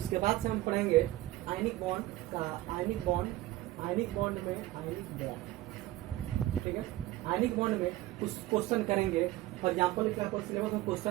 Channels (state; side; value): quieter; left; 16.6 dB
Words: बाद से हम पढ़ेंगे आयनिक बॉन्ड का, आयनिक बॉन्ड में आयनिक बॉन्ड, ठीक है। आयनिक बॉन्ड में कुछ क्वेश्चन करेंगे। फॉर एग्जाम्पल क्या आपका सिलेबस में